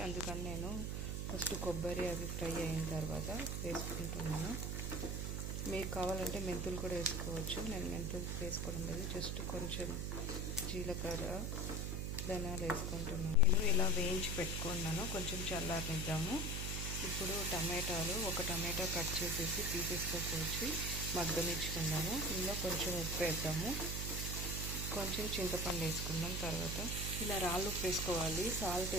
అందుకని నేను ఫస్ట్ కొబ్బరి అవి ఫ్రై అయిన తర్వాత వేసుకుంటున్నాను. మీకు కావాలంటే మెంతులు కూడా వేసుకోవచ్చు. నేను మెంతులు వేసుకోవడం లేదు, జస్ట్ కొంచెం జీలకర్ర, ధనియాలు వేసుకుంటున్నాను. నేను ఇలా వేయించి పెట్టుకున్నాను. కొంచెం చల్లారనిద్దాము. ఇప్పుడు టమాటాలు, ఒక టమాటా కట్ చేసేసి పీసెస్తో కోసి మగ్గనిచ్చుకుందాము. ఇందులో కొంచెం ఉప్పు వేద్దాము, కొంచెం చింతపండు వేసుకుందాం. తర్వాత ఇలా రాళ్ళు ఉప్పు వేసుకోవాలి. సాల్ట్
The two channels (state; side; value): noise; right; hum, 1 dB below the sound